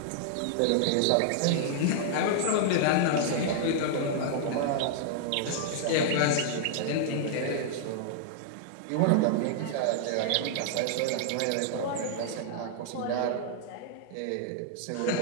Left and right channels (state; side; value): different; both; correlation -0.01